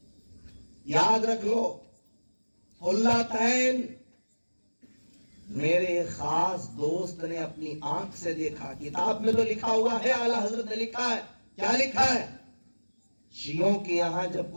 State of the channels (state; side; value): inverted; both; correlation -1.00